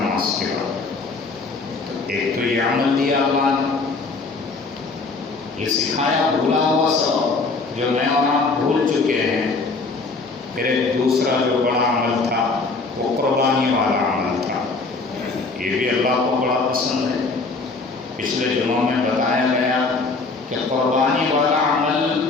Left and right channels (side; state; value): right; quieter; 3.9 dB